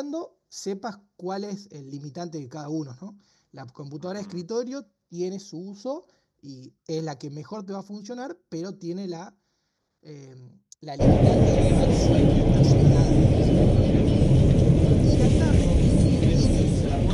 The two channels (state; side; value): identical; both; correlation 1.00